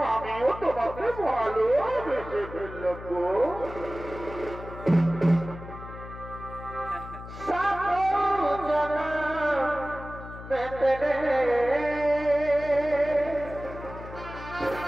আমিও তোমাকে ভালোবেসে ফেললাম গো।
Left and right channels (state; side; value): noise; left; hum, 13 dB below the sound